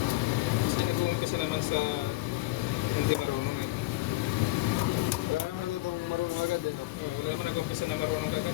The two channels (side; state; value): right; quieter; 19.5 dB